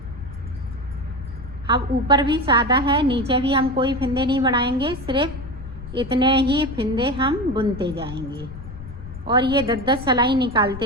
अब ऊपर भी सादा है, नीचे भी हम कोई फंदे नहीं बढ़ाएंगे, सिर्फ इतने ही फिंदे हम बुनते जाएंगे और ये 10-10 सिलाई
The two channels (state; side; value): noise; left; rumble, 13 dB below the sound